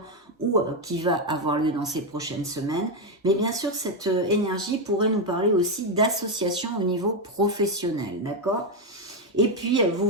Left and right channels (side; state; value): both; normal; correlation 0.06